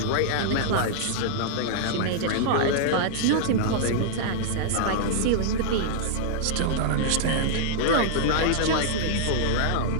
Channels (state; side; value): different; both; correlation -0.01